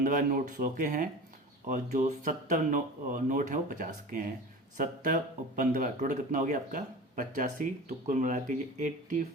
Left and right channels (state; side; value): normal; both; correlation 0.35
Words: नोट 100 के हैं, और जो 70 नोट हैं वो 50 के हैं। 70 और 15 टोटल कितना हो गया आपका 85, तो कुल मिला के ये